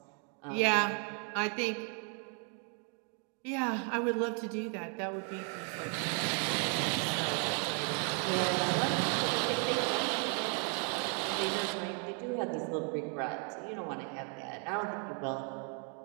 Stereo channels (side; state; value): left; quieter; 39.6 dB